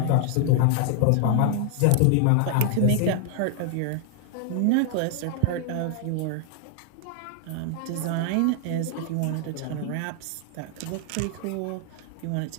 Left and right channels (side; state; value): both; different; correlation 0.00